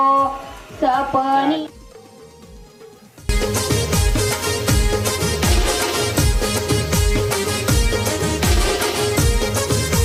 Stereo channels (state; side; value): identical; both; correlation 1.00